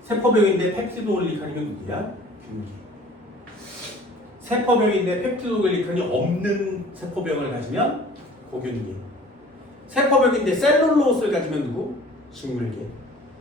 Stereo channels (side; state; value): both; normal; correlation 0.48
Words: 세포벽인데 펩티도글리칸이면 누구야? 균계. 세포벽인데 펩티도글리칸이 없는 세포벽을 가지면 고균계. 세포벽인데 셀룰로스를 가지면 누구? 식물계.